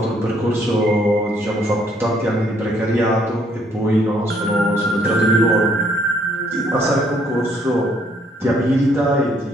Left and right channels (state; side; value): normal; both; correlation 0.67